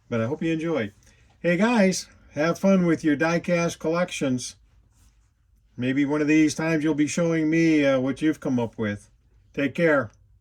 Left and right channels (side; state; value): both; identical; correlation 1.00